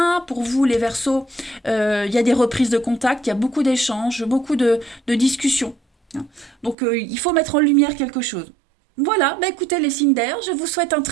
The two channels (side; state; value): left; drops out; at 6.8 s